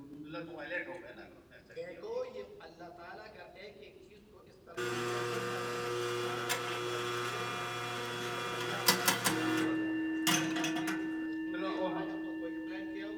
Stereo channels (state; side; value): identical; both; correlation 1.00